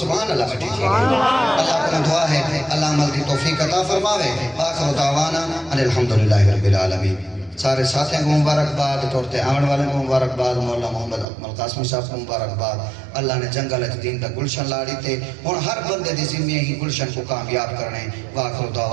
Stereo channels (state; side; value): drops out; left; at 11.2 s